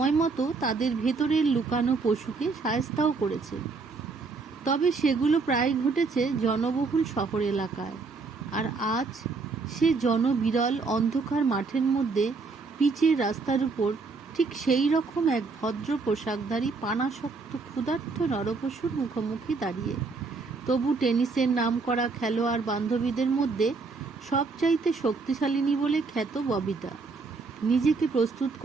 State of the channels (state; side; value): quieter; left; 4.2 dB